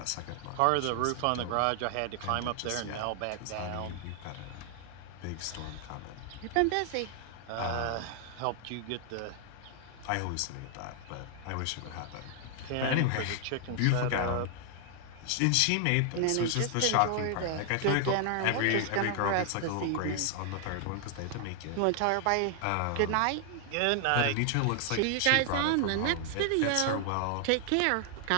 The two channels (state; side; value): different; both; correlation 0.00